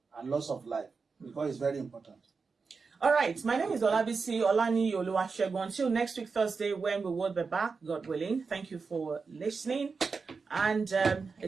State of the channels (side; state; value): left; quieter; 4.8 dB